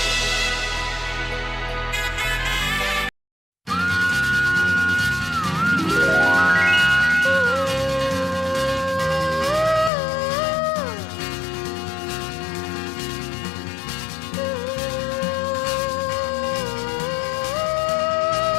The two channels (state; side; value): drops out; right; at 9.9 s